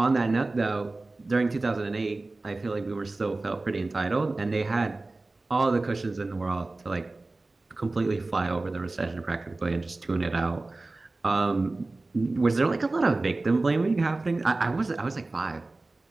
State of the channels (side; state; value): left; quieter; 3.2 dB